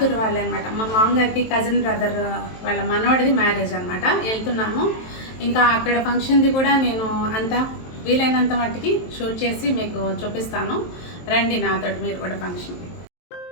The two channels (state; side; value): late; right; 23 ms